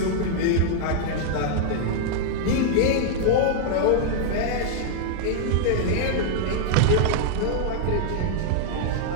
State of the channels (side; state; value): both; different; correlation -0.01